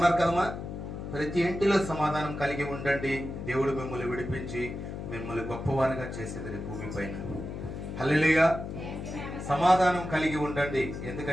కదమ్మా? ప్రతి ఇంటిలో సమాధానం కలిగి ఉండండి. దేవుడు మిమ్మల్ని విడిపించి మిమ్మల్ని గొప్పవారిగా చేసేది భూమి పైన. హల్లెలూయా. సమాధానం కలిగి ఉండండి.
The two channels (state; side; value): noise; left; hum, 7 dB below the sound